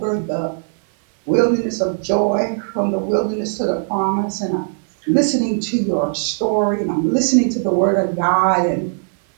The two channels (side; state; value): left; silent; 59 dB below the other